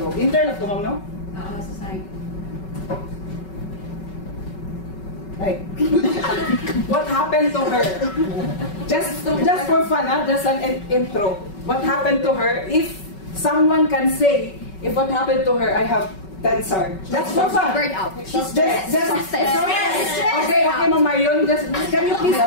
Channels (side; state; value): right; late; 5.3 ms